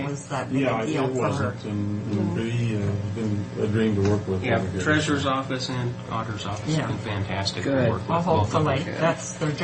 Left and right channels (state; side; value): identical; both; correlation 1.00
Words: it was that big Yeah, a it deal for her. wasn't. And Bree has been a dream to work with. Yeah, over here. Treasurer's Office and Auditor's Office Yeah. have been fantastic Good. to work with. Well, both of them. hopefully, that's their